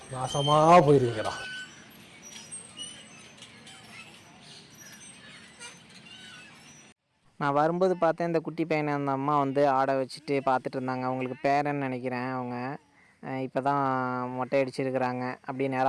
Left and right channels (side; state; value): both; identical; correlation 1.00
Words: நாசமா போயிருவீங்கடா. நான் வரும்போது பார்த்தேன் இந்த குட்டி பையனை அந்த அம்மா வந்து ஆடை வச்சுட்டு பார்த்துட்டு இருந்தாங்க. அவங்களுக்கு பேரன்னு நினைக்கிறேன். அவங்க இப்போ தான் மொட்டை அடிச்சிருக்கிறாங்க, அப்படியே